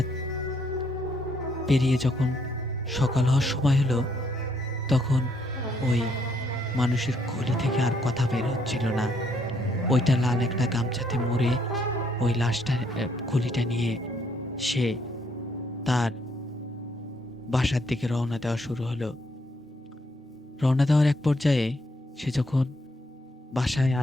পেরিয়ে যখন সকাল হওয়ার সময় হলো, তখন ওই মানুষের খুলি থেকে আর কথা বের হচ্ছিল না। ওইটা লাল একটা গামছাতে মুড়ে ওই লাশটা খুলিটা নিয়ে সে তার বাসার দিকে রওনা দেওয়া শুরু হলো। রওনা দেওয়ার এক পর্যায়ে সে যখন বাসায়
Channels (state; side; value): normal; both; correlation 0.71